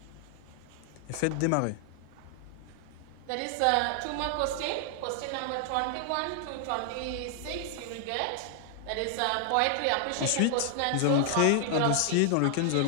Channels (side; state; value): both; different; correlation 0.00